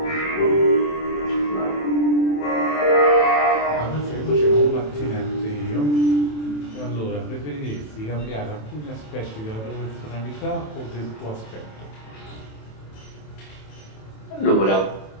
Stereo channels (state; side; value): late; right; 27 ms